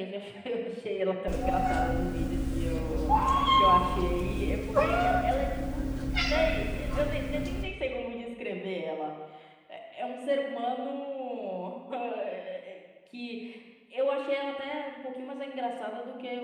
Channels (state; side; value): identical; both; correlation 1.00